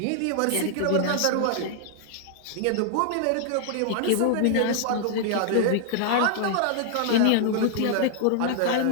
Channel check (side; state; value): both; different; correlation -0.01